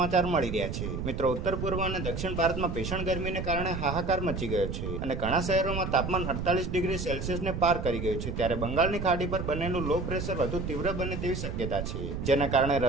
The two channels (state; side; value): noise; right; rumble, 4 dB below the sound